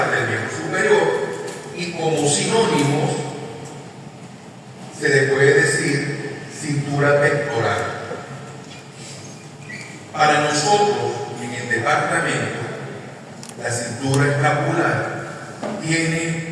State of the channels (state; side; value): identical; both; correlation 1.00